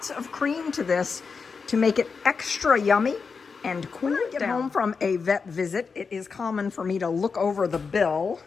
of cream to this to make it extra yummy and cool it down. When I get home from a vet visit, it is common for me to look over the bill,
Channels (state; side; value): quieter; right; 5.2 dB